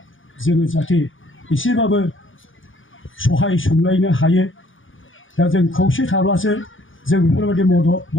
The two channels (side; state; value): right; late; 0.57 ms